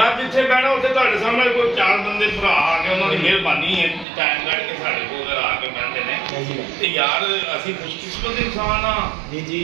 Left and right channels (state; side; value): drops out; left; at 4.0 s